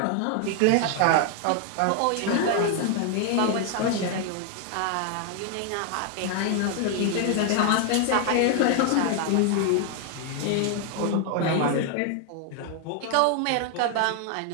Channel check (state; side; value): different; both; correlation 0.00